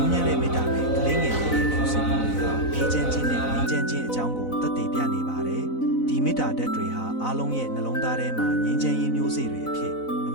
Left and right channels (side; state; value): right; late; 4.0 ms